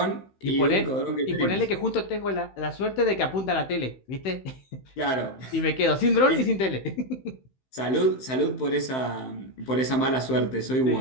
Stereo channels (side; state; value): right; late; 15 ms